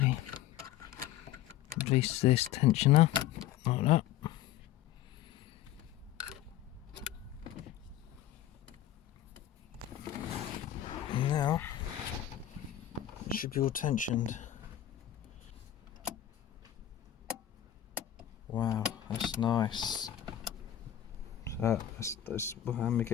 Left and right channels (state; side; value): quieter; right; 11.9 dB